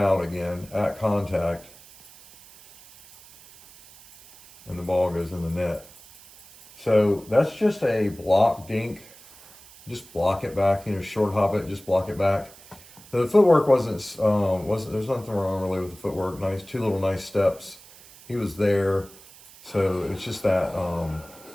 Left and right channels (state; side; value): noise; right; hiss, 22 dB below the sound